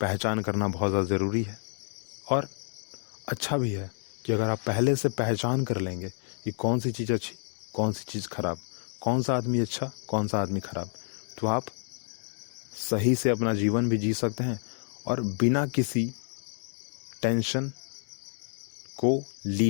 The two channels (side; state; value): right; silent; 58 dB below the other